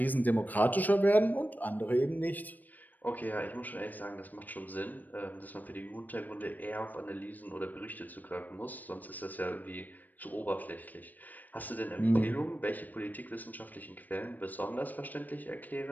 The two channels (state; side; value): late; right; 0.086 ms